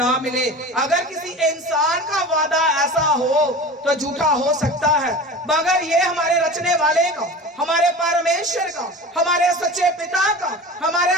मिले। अगर किसी इंसान का वादा ऐसा हो तो झूठा हो सकता है, मगर ये हमारे रचने वाले का, हमारे परमेश्वर का, हमारे सच्चे पिता का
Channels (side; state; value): both; normal; correlation 0.35